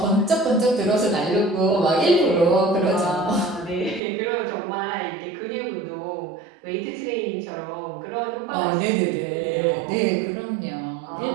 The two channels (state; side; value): drops out; left; at 4.0 s